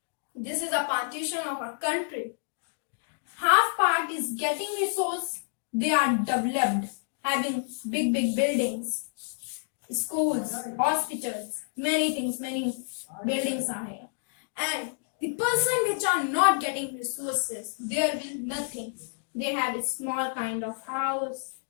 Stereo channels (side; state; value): right; silent; digital silence